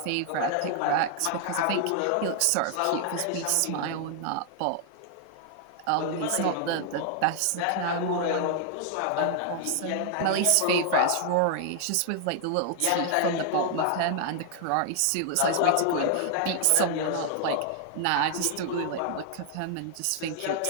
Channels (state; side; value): different; both; correlation 0.00